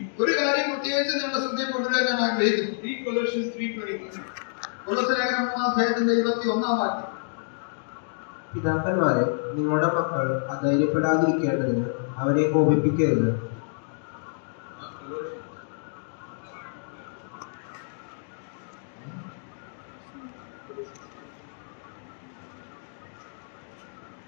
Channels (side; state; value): right; silent; digital silence